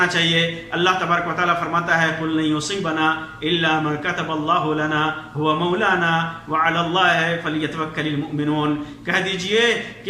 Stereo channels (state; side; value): identical; both; correlation 1.00